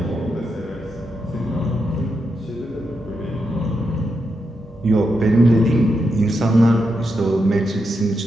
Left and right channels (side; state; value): both; normal; correlation 0.84